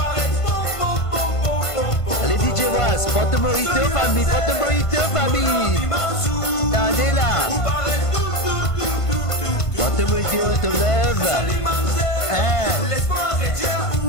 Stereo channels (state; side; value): late; right; 1.5 ms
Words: Porte mojito famille, porte mojito famille. Attendez là. Porte mojito, te lève. Hein?